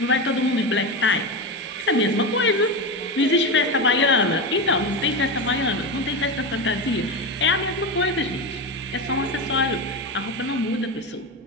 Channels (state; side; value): normal; both; correlation 0.17